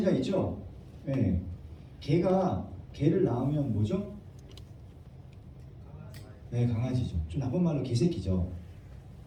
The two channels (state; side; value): identical; both; correlation 1.00